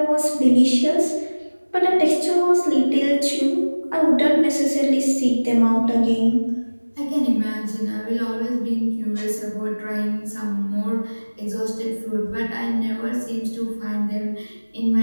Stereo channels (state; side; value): inverted; both; correlation -1.00